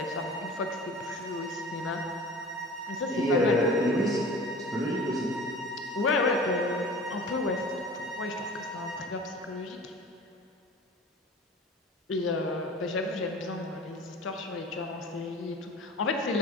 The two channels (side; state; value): both; normal; correlation 0.41